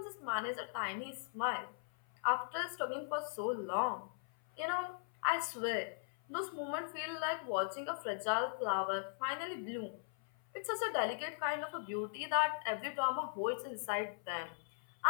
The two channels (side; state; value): right; silent; 51 dB below the other